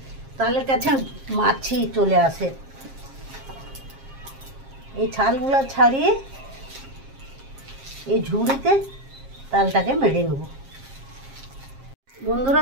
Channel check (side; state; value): left; late; 7.5 ms